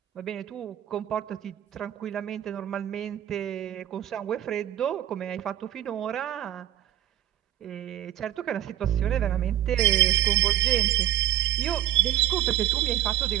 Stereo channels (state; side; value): quieter; left; 12.3 dB